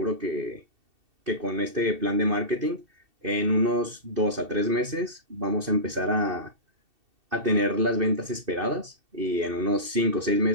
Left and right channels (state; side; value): late; left; 2.7 ms